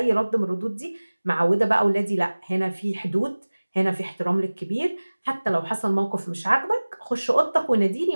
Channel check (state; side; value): inverted; both; correlation -1.00